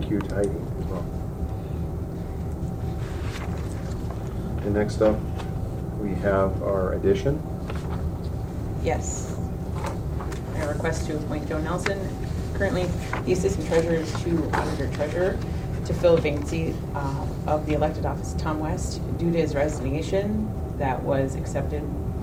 you to Heidi as well. And next up, we have our addition. Yes. I request to appoint Joe Nelson, currently the Assistant Treasurer to Auditor Treasurer, to fill a vacancy of the elected office Tom West due to his resignation that was accepted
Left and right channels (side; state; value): both; identical; correlation 1.00